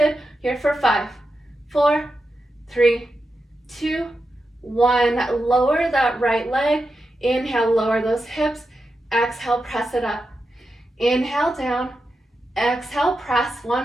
Here for 5, 4, 3, 2, 1. Lower that right leg. Inhale, lower those hips. Exhale, press it up. Inhale, down. Exhale, press.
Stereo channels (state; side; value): normal; both; correlation 0.89